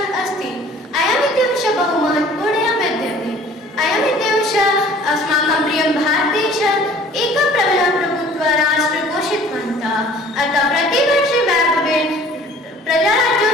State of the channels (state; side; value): normal; both; correlation 0.51